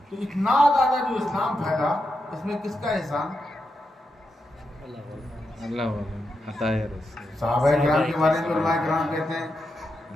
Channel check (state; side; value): normal; both; correlation 0.86